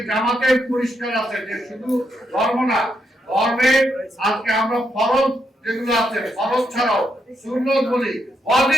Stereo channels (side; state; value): both; normal; correlation 0.80